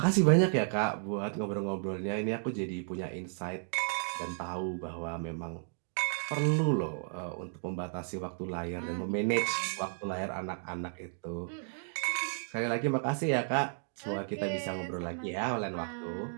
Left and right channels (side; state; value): left; silent; digital silence